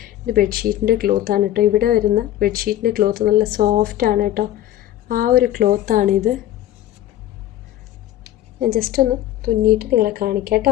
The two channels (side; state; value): right; quieter; 13.1 dB